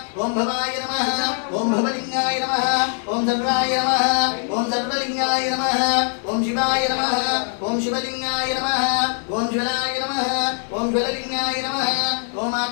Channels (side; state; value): right; silent; 64 dB below the other